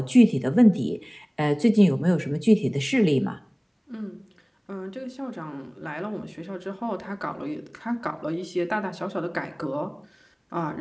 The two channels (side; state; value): both; identical; correlation 1.00